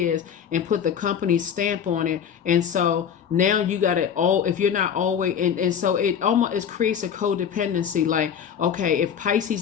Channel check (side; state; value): right; quieter; 8.1 dB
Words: and put the company stamp on it. And so now you got it all, if you're not always, and so it creates a codependency. Like, okay, if